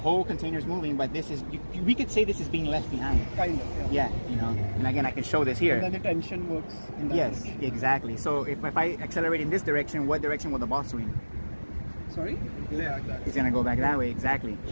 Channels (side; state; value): both; inverted; correlation -1.00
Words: container is moving, but this is, we could say this is being left behind. Kind of, Yeah, you know, and again, I can show this here. And then the tension works in that Yes, direction. exactly. So if I accelerate in this direction, what direction will the ball swing? Sorry? Yeah, like that. It's gonna go back that way, exactly.